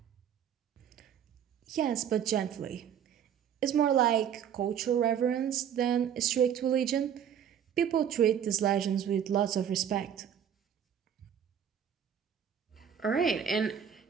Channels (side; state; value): left; quieter; 8.8 dB